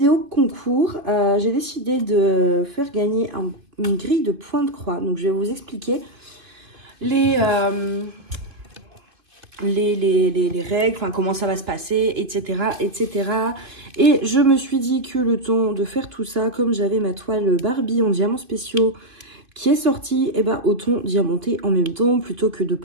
concours. J'ai décidé de faire gagner une grille de points de croix, donc je vais vous expliquer les règles, enfin, comment ça va se passer, etc., etc. Et je me suis dit que le temps de faire tout ça, comme j'avais ma toile Barbie en diamants spéciaux qui est sortie, et ben autant diamanter en même temps plutôt que de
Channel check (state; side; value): late; left; 2.7 ms